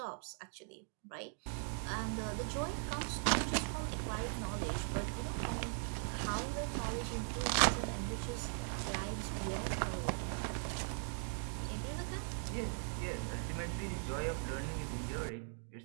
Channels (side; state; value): left; silent; 51 dB below the other